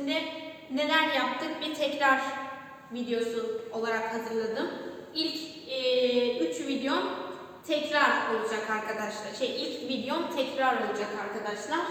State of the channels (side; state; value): both; identical; correlation 1.00